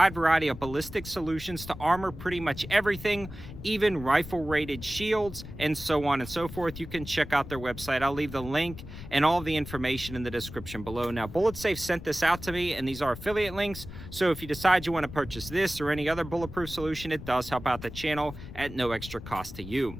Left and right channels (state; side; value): noise; left; rumble, 12 dB below the sound